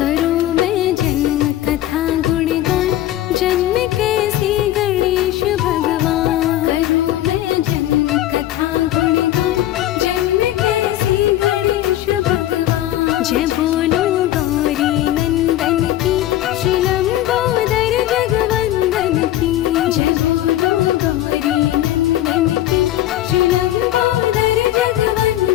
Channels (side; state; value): right; quieter; 13.7 dB